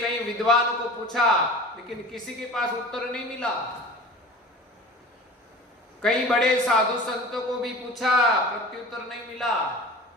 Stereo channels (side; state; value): both; normal; correlation 0.39